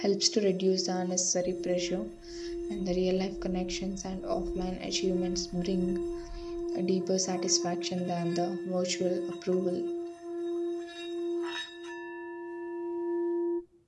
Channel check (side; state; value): both; identical; correlation 1.00